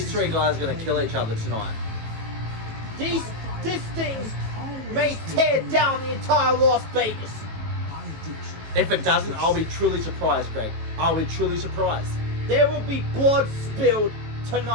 three guys are going to kill each other tonight. This thing may tear down the entire Las Vegas. If it doesn't, I'll be truly surprised, Greg. I'll be truly surprised. There will be blood spilled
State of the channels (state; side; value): late; left; 18 ms